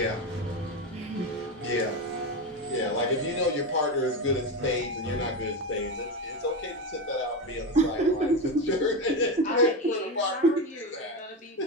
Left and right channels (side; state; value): both; normal; correlation 0.16